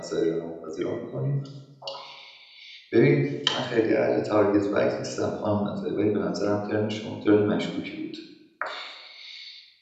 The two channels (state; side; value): identical; both; correlation 1.00